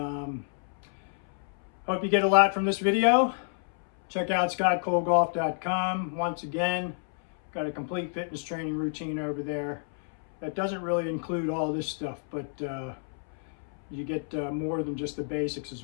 hope you get a lot from this video. Check out scottcolegolf.com. Once again, got a complete fitness training routine over there that doesn't really include all this stuff, but you get more than just the basics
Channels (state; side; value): silent; right; 59 dB below the other